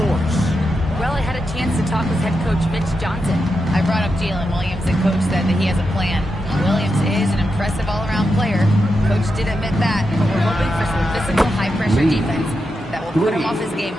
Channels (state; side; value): normal; both; correlation 0.87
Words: Well, I had a chance to talk with head coach Mitch Johnson. I brought up Jalen Williams, and coach said that he has a plan. Williams is an impressive all-around player. Coach did admit that, but we're hoping for some physical, high-pressure defense that will put him off his game